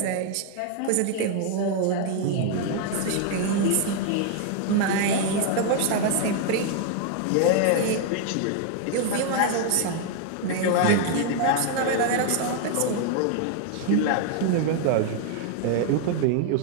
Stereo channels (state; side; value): different; both; correlation 0.00